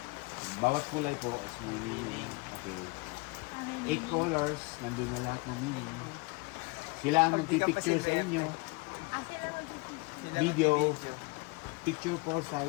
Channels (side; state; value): right; quieter; 26.9 dB